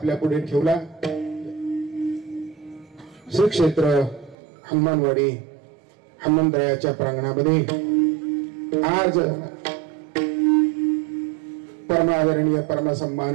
पुढे ठेवला. श्री क्षेत्र हनुमानवाडी हनुमंतरायाच्या प्रांगणामध्ये आज परमादरणीय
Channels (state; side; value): drops out; left; at 4.4 s